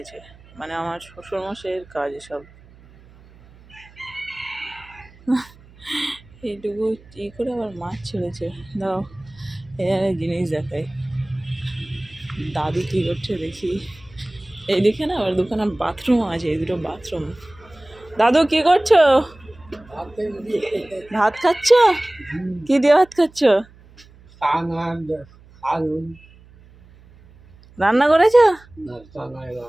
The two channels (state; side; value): noise; right; hum, 25 dB below the sound